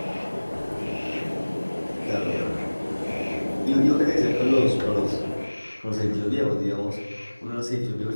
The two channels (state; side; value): inverted; both; correlation -1.00